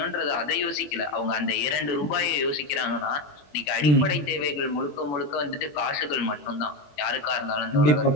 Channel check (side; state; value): right; late; 21 ms